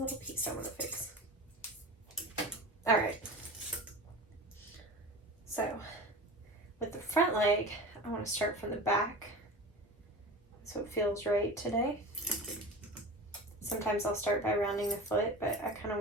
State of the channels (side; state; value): both; normal; correlation 0.32